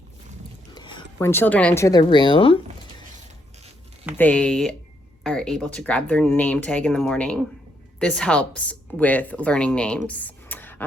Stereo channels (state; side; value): normal; both; correlation 0.75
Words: When children enter the room, they are able to grab their name tag in the morning. This helps with learning names.